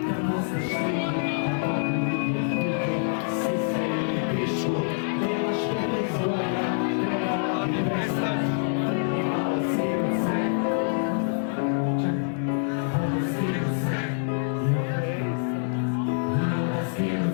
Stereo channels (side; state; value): right; silent; 61 dB below the other